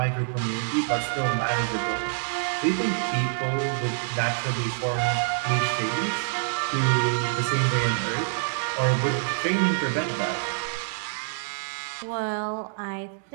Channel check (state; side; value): silent; left; 61 dB below the other